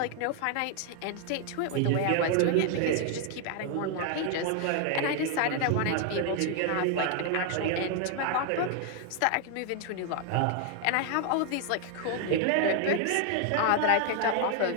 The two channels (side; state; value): both; different; correlation 0.00